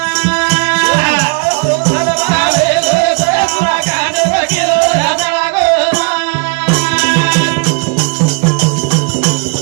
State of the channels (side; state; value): left; quieter; 35.3 dB